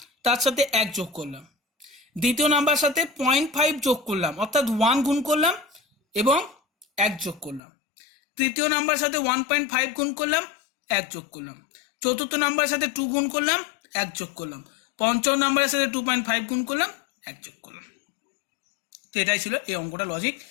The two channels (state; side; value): drops out; right; at 7.6 s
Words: তার সাথে 1 যোগ করলাম। দ্বিতীয় নাম্বার সাথে 0.5 যোগ করলাম, অর্থাৎ 1 গুণ করলাম এবং 1 যোগ করলাম। তৃতীয় নাম্বার সাথে 1.5 গুণ করলাম, 1 যোগ করলাম। চতুর্থ নাম্বারের সাথে 2 গুণ করলাম, 1 যোগ করলাম। পঞ্চম নাম্বারের সাথে 2.5 গুণ করলাম, 1 যোগ করলাম। তো এটাই ছিল এই অঙ্কটা লজিক,